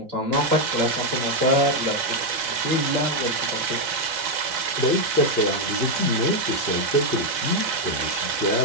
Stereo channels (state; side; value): late; left; 4.3 ms